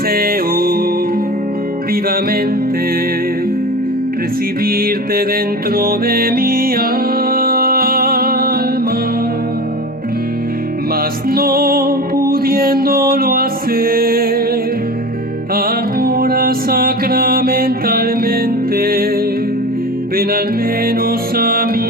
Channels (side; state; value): both; normal; correlation 0.31